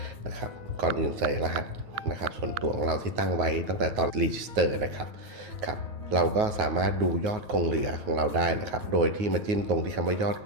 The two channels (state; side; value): late; left; 9.4 ms